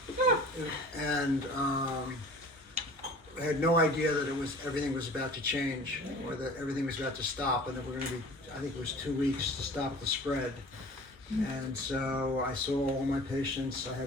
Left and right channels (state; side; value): normal; both; correlation 0.44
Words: And I had no idea that everything was about to change or that everything was about to stop, and that we're going to be, I think it was 2 weeks to stop the spread. And so I saw all my patients. I